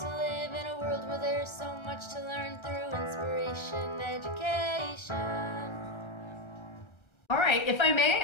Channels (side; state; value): right; late; 1.3 ms